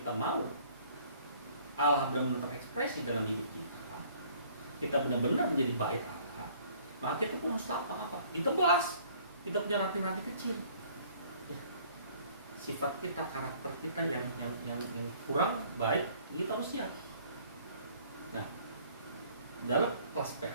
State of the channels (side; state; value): both; inverted; correlation -0.57